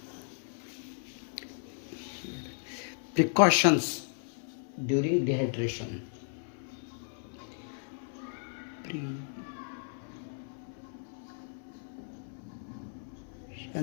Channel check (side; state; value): right; silent; 55 dB below the other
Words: Here. Precautions during dehydration.